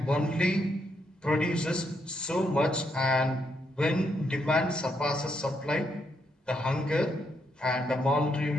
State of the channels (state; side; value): normal; both; correlation 0.78